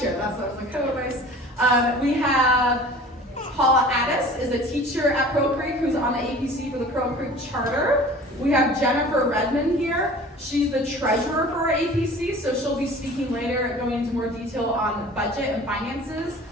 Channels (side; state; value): both; normal; correlation 0.44